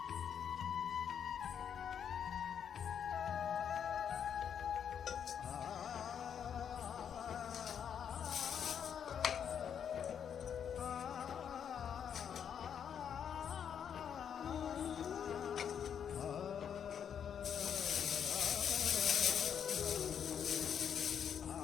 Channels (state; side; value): quieter; right; 8.1 dB